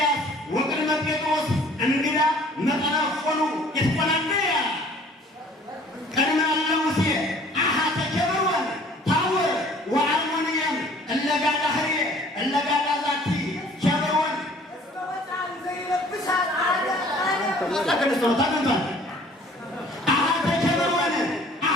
ወቅድመ ጴጥሮስ እንግዳ መጠነፎኑ ይትቆናነያ ቅድመ እለ ሙሴ አሃተ ኬብሮን ታቦር ወአርሞንየም እለጋዳ ህርየ እለጋዳ ዛቲ ኬብሮን ታገንቷል አሃተ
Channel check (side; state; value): both; normal; correlation 0.53